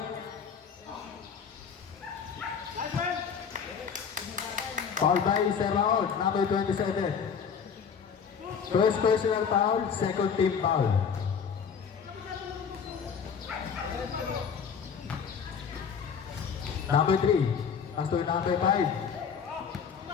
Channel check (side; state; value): right; quieter; 6.7 dB